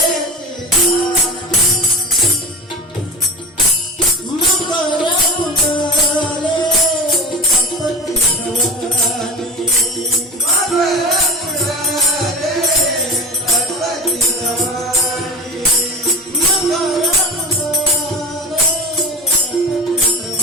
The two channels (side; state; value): both; normal; correlation 0.30